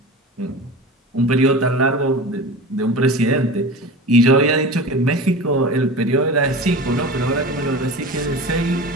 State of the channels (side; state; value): both; normal; correlation 0.32